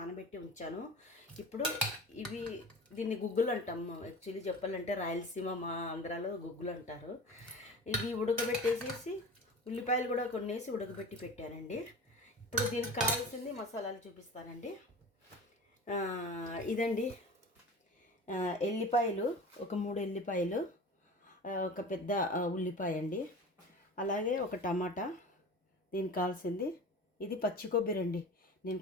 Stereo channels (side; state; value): both; normal; correlation 0.35